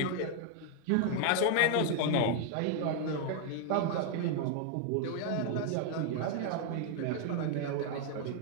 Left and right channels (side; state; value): both; different; correlation 0.00